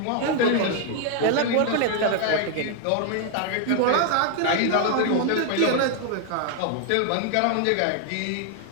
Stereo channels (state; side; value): different; both; correlation 0.00